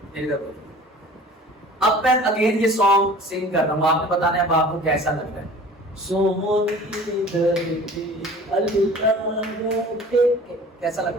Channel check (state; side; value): normal; both; correlation 0.45